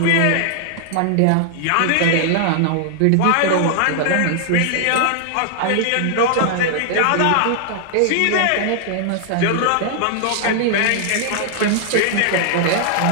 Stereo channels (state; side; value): different; both; correlation 0.00